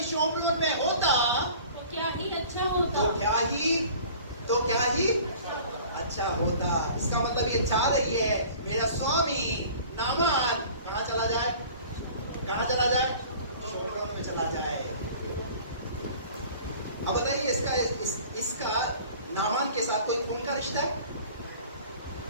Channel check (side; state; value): both; inverted; correlation -0.46